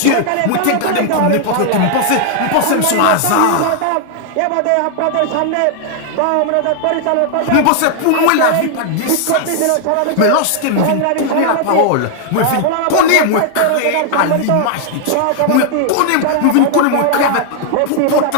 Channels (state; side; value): different; both; correlation 0.00